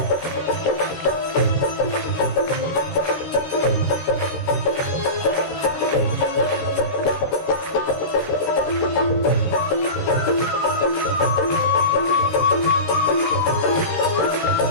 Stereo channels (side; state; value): right; late; 13 ms